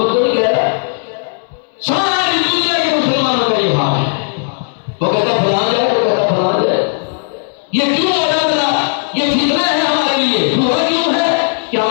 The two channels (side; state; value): right; silent; digital silence